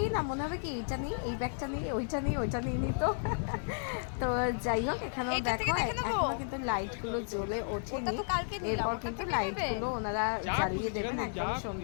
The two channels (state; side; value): silent; right; digital silence